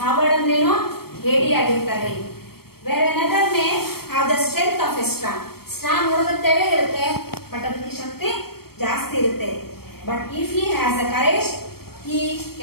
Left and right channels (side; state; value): right; late; 0.95 ms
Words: ಕಾವರ್ಡ್ ಅಂದ್ರೇನು? ಹೇಡಿ ಆಗಿರ್ತಾರೆ. Where another may have the strength of a straw. Straw ನೋಡೋದಕ್ಕೆ ತೆಳೆ ಇರುತ್ತೆ, ಬಟ್ ಅದಕ್ಕೆ ಶಕ್ತಿ ಜಾಸ್ತಿ ಇರುತ್ತೆ. But if he has a courage, he